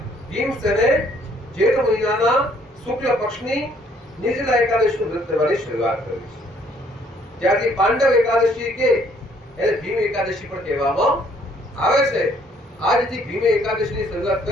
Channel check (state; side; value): normal; both; correlation 0.64